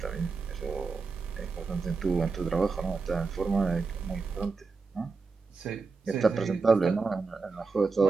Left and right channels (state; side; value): quieter; left; 4.4 dB